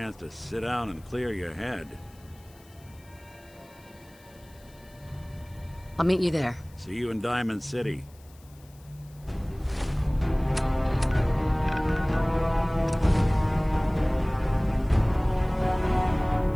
to sit down and clear your head. I'll meet you there. See you in Diamond City.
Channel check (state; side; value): noise; left; hiss, 28 dB below the sound